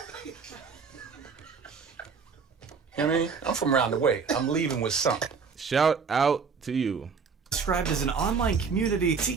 You know what I mean? I'm from around the way. I'm leaving with something. Shout out to you. Described as an online community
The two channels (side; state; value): left; quieter; 5.5 dB